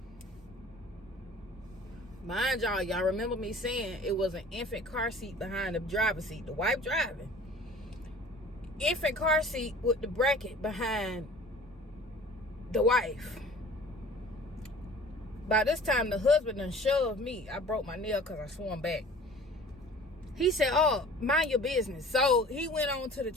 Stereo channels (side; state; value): both; normal; correlation 0.46